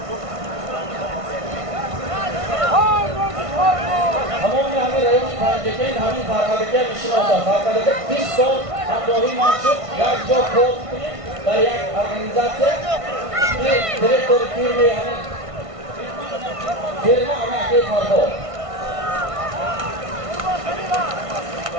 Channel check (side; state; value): left; late; 1.5 ms